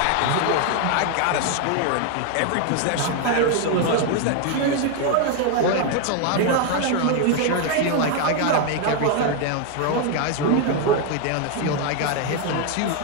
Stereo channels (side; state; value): both; different; correlation 0.01